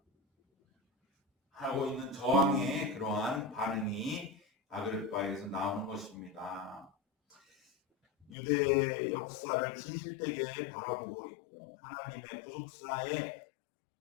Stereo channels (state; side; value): drops out; right; at 8.3 s